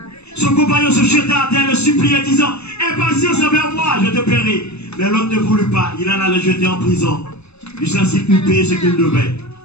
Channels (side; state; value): right; late; 0.80 ms